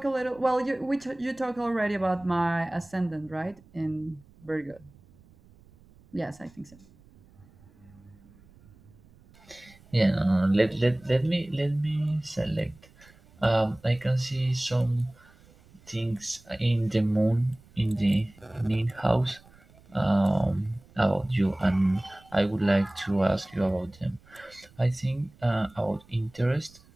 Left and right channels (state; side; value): noise; right; rumble, 27 dB below the sound